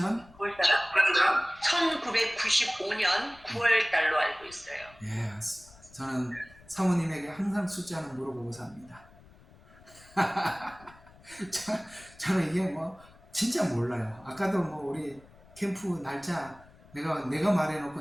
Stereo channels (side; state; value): left; noise; rumble, 24 dB below the sound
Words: 1995년 9월 달로 알고 있어요. 예, 저는 사모님에게 항상 숫자는 물어보고 삽니다. 저는 이게 뭐 진짜 몰라요. 아까도 뭐 우리 캠프 날짜 내가